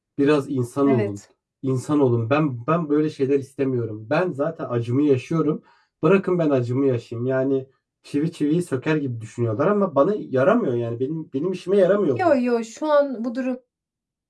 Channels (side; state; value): both; identical; correlation 1.00